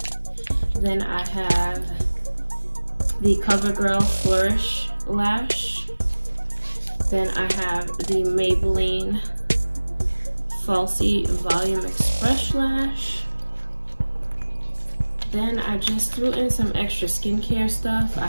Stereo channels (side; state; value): both; inverted; correlation -1.00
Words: Then I have the CoverGirl Flourish Lash. Then I have the Maybelline Falsies Volume Express Lash. Then I just threw in some extra skincare stuff. I